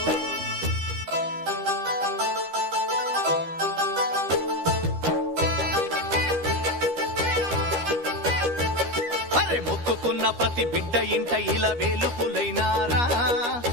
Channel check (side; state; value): left; late; 13 ms